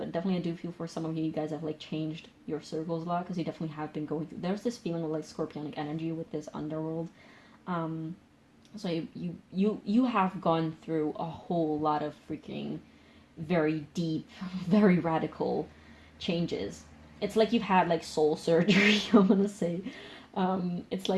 definitely I do feel for some of you guys have like changed your circles a lot, because you definitely have been going through, there's this feeling of like scorpionic energy with this underworld. So you have gone through a whole lot of freaking very deep, very radical changes. It's like you've had like soul surgery, I'm gonna say. It's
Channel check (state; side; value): identical; both; correlation 1.00